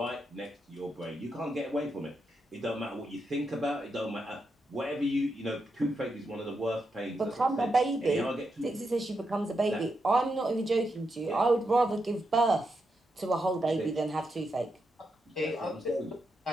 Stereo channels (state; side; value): normal; both; correlation 0.84